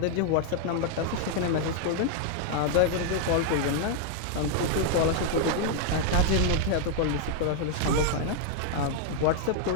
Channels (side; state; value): both; different; correlation 0.00